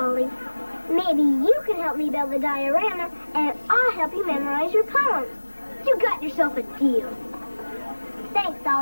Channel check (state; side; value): inverted; both; correlation -1.00